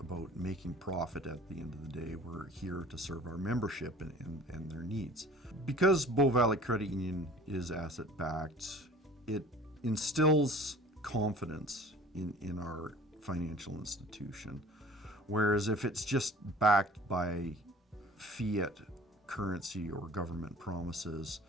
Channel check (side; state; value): both; normal; correlation 0.47